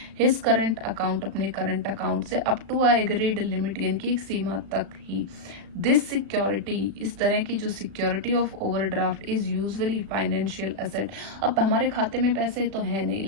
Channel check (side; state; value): left; late; 36 ms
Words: हिज करंट अकाउंट, अपने करंट अकाउंट से up to a agreed limit, यानी कि एक सीमा तक ही। दिस सिक्योरिटी, इस तरह की जो security of overdraft is usually financial asset. अब हमारे खाते में पैसे तो है नहीं,